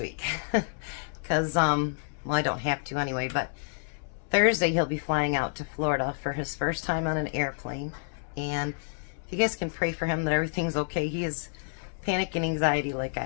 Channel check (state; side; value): silent; right; 59 dB below the other